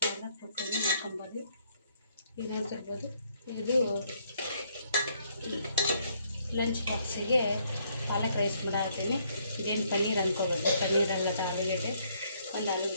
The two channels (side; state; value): both; inverted; correlation -0.70